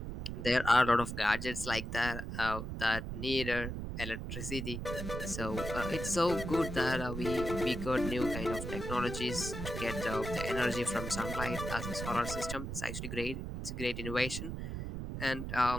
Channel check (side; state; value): right; noise; rumble, 6 dB below the sound